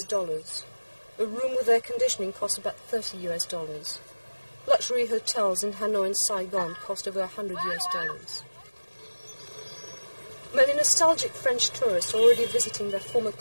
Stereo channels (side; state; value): both; inverted; correlation -1.00